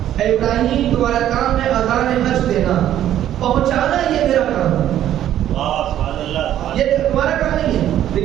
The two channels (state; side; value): quieter; left; 11.7 dB